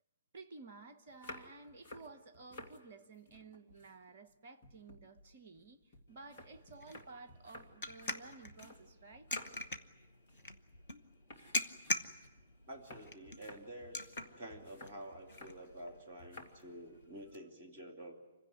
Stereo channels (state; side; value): inverted; both; correlation -0.53